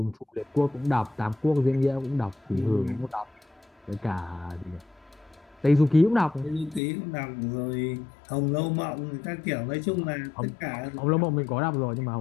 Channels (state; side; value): drops out; right; at 6.8 s